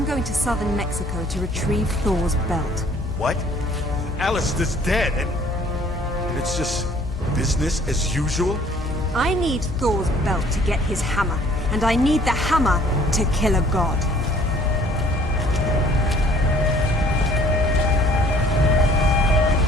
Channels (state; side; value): noise; left; hum, 8 dB below the sound